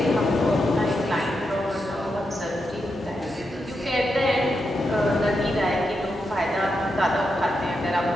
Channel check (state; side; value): normal; both; correlation 0.85